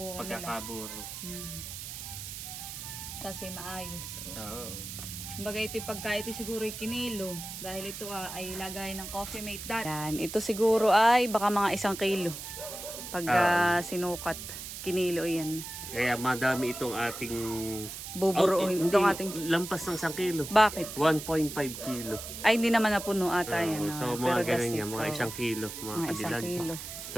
nila. Pagkakaburo. Kasi maayos. Oo. Kumbaga ito yung pagka ito siguro yung kinilo. Dahil ito ay lagay ng Coffee Mate dati. Yan, ito siguro ay baka mga 1 kilo. Pag sinukat, kinilo yan. Kaya madami itong ating buburuin. Itong ating lampas ng 1 kilo. Bakit? 1.5 kilo. Ay, hindi naman napuno ata yan. So, mga ganun yan. Mga 1 kilo. Mga kadilag. 1 kilo.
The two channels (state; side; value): noise; right; hiss, 9 dB below the sound